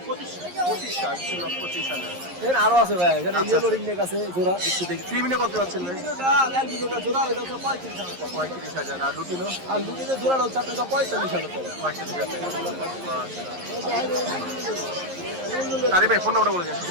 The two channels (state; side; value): late; left; 11 ms